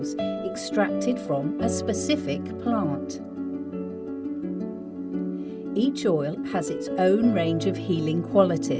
extracted from a specific plant. Each oil has its own range of healing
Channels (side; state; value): both; identical; correlation 1.00